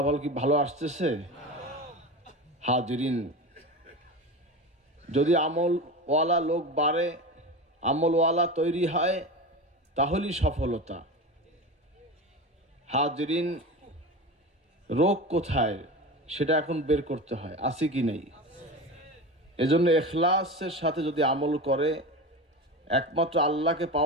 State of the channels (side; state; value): both; normal; correlation 0.27